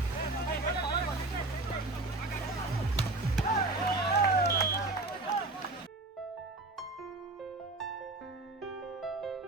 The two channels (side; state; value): left; quieter; 3.0 dB